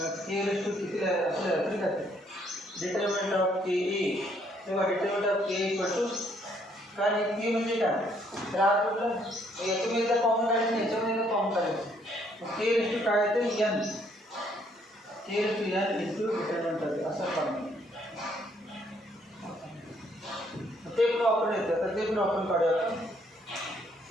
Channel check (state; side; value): normal; both; correlation 0.68